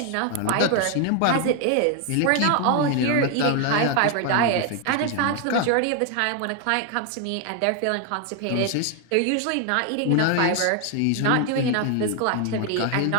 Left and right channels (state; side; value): different; both; correlation 0.00